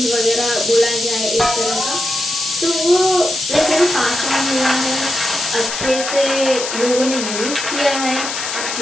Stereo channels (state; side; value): noise; left; hiss, 5 dB below the sound